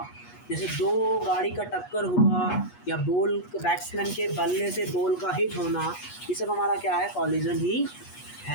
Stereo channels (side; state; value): right; late; 8.3 ms